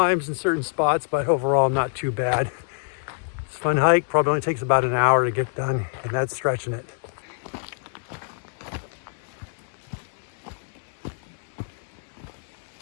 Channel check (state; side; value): silent; right; 61 dB below the other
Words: in certain spots, but overall not too bad. It's a fun hike, probably only takes about an hour to get done, and that's stretching it.